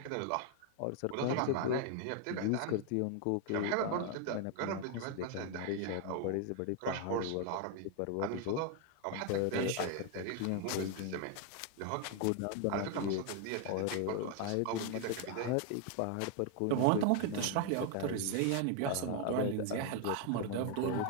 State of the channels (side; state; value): both; different; correlation 0.01